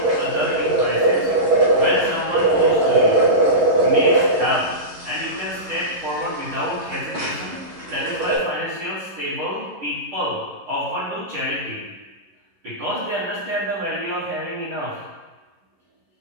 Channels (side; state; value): left; late; 11 ms